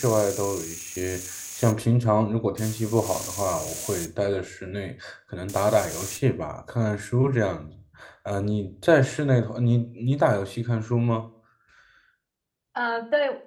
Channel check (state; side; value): identical; both; correlation 1.00